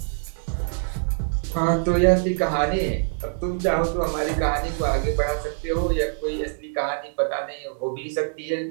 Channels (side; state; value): left; silent; digital silence